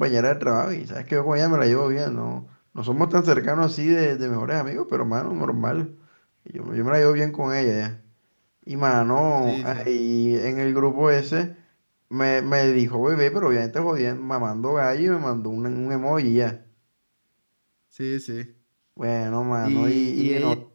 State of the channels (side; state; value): both; inverted; correlation -1.00